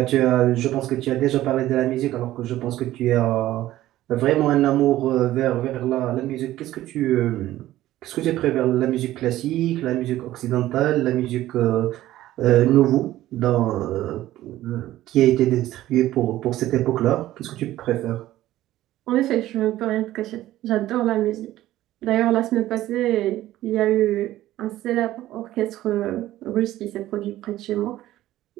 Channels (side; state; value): left; quieter; 14.7 dB